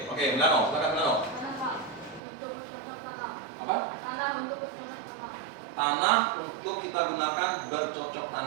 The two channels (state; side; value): drops out; left; at 2.2 s